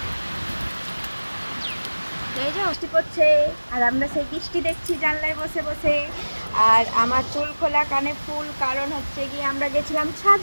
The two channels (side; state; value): both; inverted; correlation -1.00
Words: এই যে বৃষ্টি পড়ছে আর আমরা সেই বৃষ্টি দেখছি জানলায় বসে বসে। আর আমার চুল খোলা কানে ফুল, কারণ হচ্ছে গিয়ে আমরা গেছিলাম